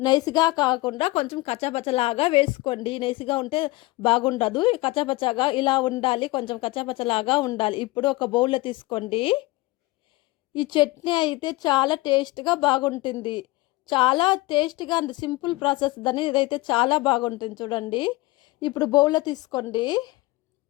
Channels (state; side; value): quieter; right; 20.9 dB